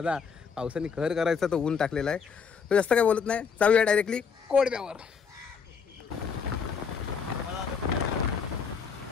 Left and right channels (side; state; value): right; quieter; 6.1 dB